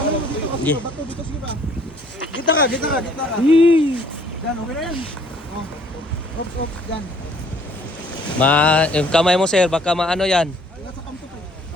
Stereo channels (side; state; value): both; normal; correlation 0.59